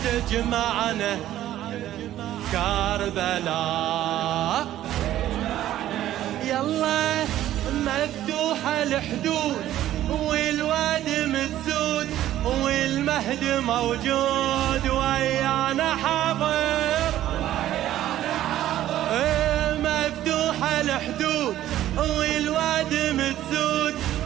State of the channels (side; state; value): left; quieter; 13.0 dB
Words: تجمعنا كربلاء. يلا مفتوحة الحدود والواد متسود والمهد موجود ويانا حاضر. مفتوحة الحدود والواد متسود